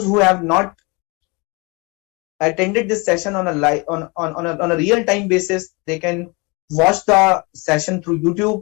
who have not attended this session on a real time basis, they can watch the session through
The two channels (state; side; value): quieter; right; 28.3 dB